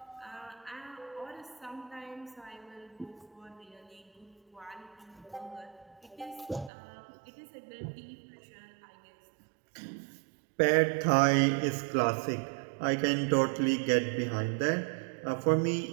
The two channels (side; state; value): left; drops out; at 6.7 s